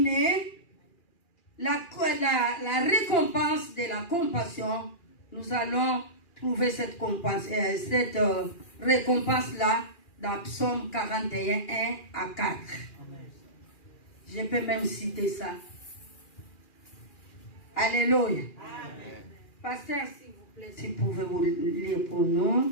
la récompense de la compassion, nous allons trouver cette récompense-là dans Psaume 41, 1 à 4. Je peux même citer ça. Alléluia. Amen. Pasteur, s'il vous plaît, si vous pouvez vous lire pour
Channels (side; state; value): right; late; 2.4 ms